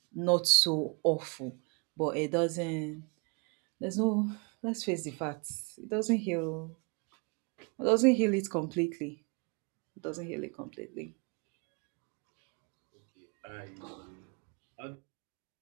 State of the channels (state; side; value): quieter; left; 32.8 dB